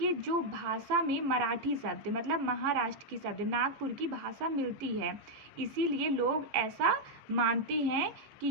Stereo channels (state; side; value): late; left; 15 ms